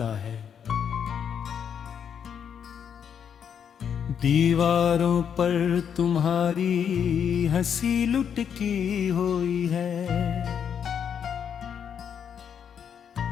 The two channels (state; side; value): quieter; right; 7.9 dB